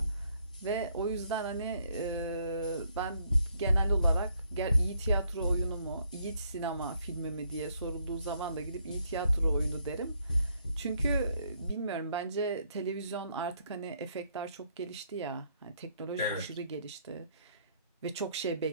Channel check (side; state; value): both; inverted; correlation -0.70